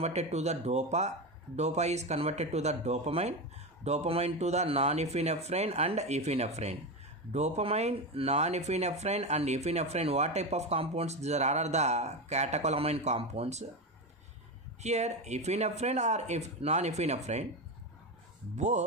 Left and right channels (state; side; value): normal; both; correlation 0.16